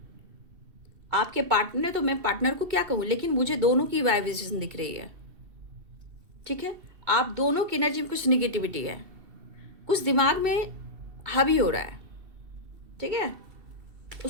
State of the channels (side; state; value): left; late; 2.7 ms